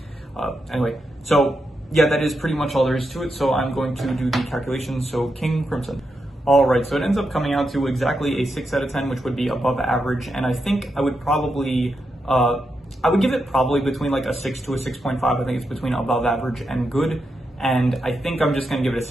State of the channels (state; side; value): normal; both; correlation 0.85